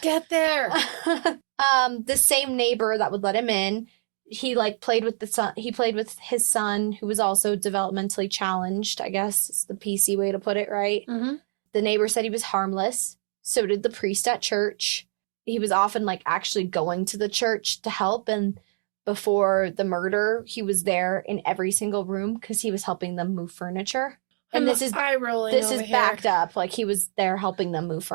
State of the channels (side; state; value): left; silent; 61 dB below the other